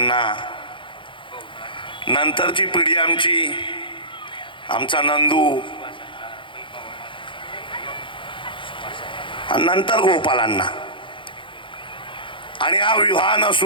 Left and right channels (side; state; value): right; late; 0.24 ms